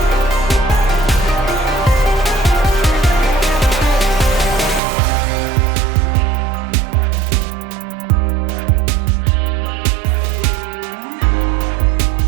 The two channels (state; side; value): drops out; left; at 4.8 s